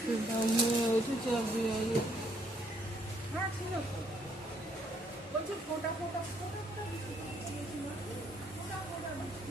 বলছি ফোটা ফোটা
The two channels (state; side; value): normal; both; correlation 0.68